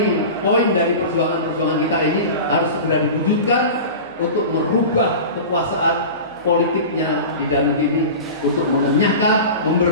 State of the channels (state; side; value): inverted; both; correlation -0.32